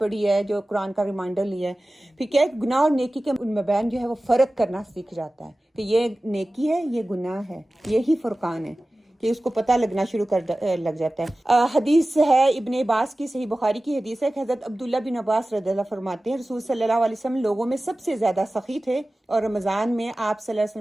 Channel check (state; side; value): normal; both; correlation 0.96